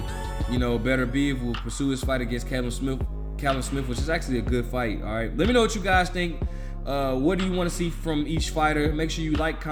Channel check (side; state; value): both; identical; correlation 1.00